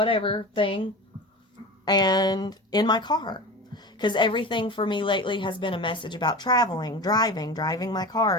thing, and in my car. Because everything for me lately has been a message about traveling, driving my car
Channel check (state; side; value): normal; both; correlation 0.30